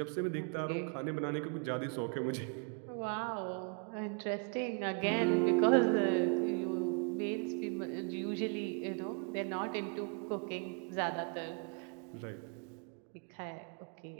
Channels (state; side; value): quieter; left; 37.4 dB